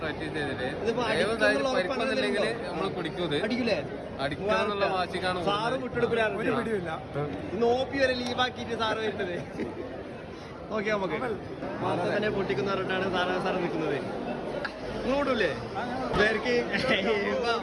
ചെയ്തിട്ട് നമ്മൾ അടിക്കൂലേ? അടിക്കാന്നുള്ള വാശിക്കാണ് സാറ് വിട്ടെടുക്കില്ല. നോപ്പി വരെ ലീവാക്കിയിട്ട് സാറ് വരുന്നത്. ഓക്കെ നമുക്ക് മാത്രം തന്നെ പൊട്ടിക്കുന്ന പറഞ്ഞിട്ടാണ് സാറ് നിൽക്കുന്നത്. ഇങ്ങോട്ടൂല്ലേ പേർക്ക്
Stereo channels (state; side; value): identical; both; correlation 1.00